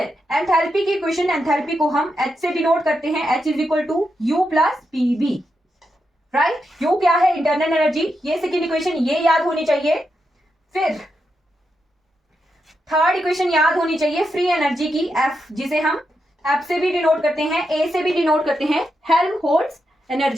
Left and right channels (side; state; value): both; normal; correlation 0.85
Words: एंथैल्पी की इक्वेशन, एंथैल्पी को हम h से डिनोट करते हैं, h is equal to u plus pv, right? u क्या है? Internal energy. ये सेकेंड इक्वेशन ये याद होनी चाहिए। फिर थर्ड इक्वेशन याद होनी चाहिए फ्री एनर्जी की, f, जिसे हम f से भी डिनोट करते हैं, a से भी डिनोट करते हैं, हेल्महोल्ट्ज